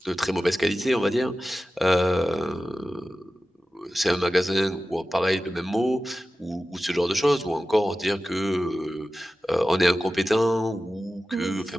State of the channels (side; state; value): both; normal; correlation 0.94